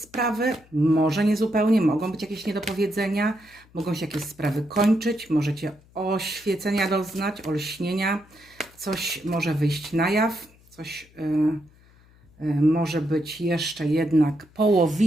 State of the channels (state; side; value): noise; left; hum, 28 dB below the sound